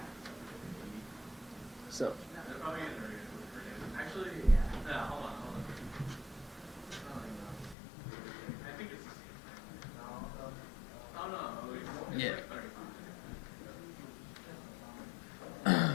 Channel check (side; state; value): right; drops out; at 7.8 s